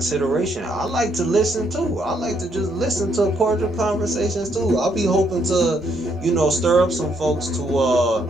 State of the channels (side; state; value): both; normal; correlation 0.73